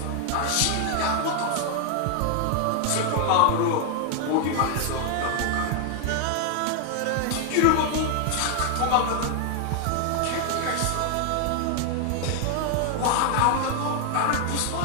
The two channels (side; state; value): both; different; correlation 0.01